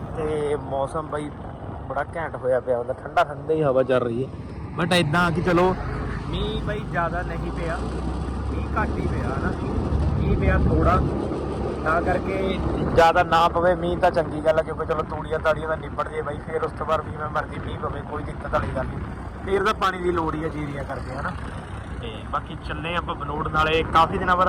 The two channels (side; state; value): both; identical; correlation 1.00